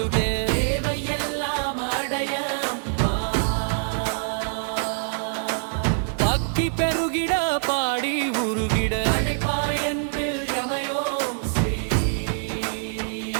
தேவையெல்லாம் அடைய பக்தி பெருகிட பாடி உருகிட அடைப்பாயன்பில் யமயோம் ஸ்ரீ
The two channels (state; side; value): silent; left; digital silence